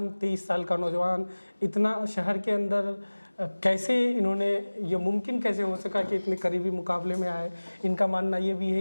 23 साल का नौजवान, इतना शहर के अंदर कैसे इन्होंने, ये मुमकिन कैसे हो सका कि इतने करीबी मुकाबले में आए? इनका मानना ये भी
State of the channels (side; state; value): both; inverted; correlation -1.00